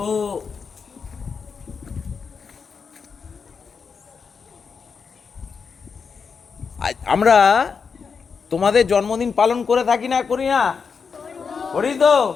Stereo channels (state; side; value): quieter; right; 5.7 dB